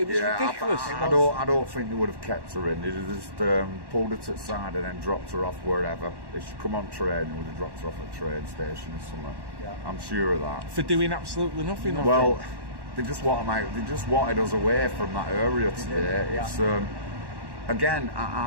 was ridiculous. I don't think they would have kept her in. They'd have just pulled her to the side and then dropped her off wherever. If she come on train, they would have dropped her off at a train station or somewhere. I'm sure of that. For doing absolutely nothing. Well, they just wanted us away from that area today. It's again,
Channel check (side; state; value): left; late; 1.1 ms